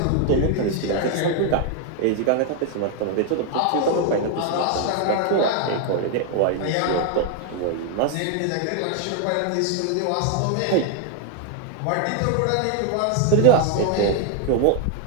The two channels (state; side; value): different; both; correlation 0.00